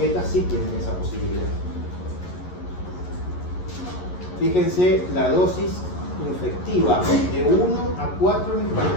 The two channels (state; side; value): late; right; 11 ms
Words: sí tienen esa posibilidad. Fíjense la dosis infectiva de 1 a 4